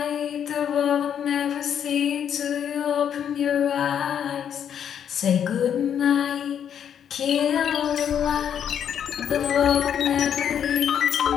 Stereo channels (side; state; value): right; quieter; 8.8 dB